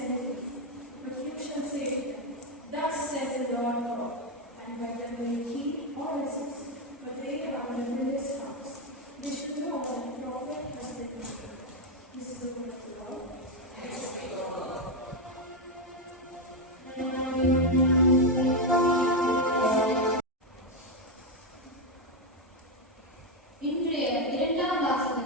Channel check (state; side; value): normal; both; correlation 0.05